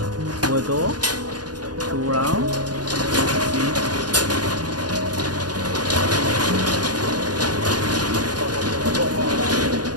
full door, 2 rounds.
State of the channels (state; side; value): late; left; 0.69 ms